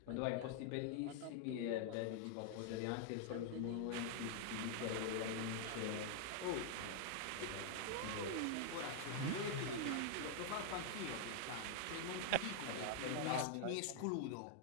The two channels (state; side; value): different; both; correlation 0.00